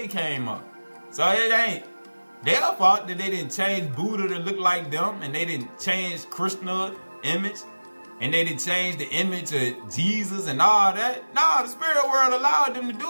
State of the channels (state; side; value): inverted; both; correlation -1.00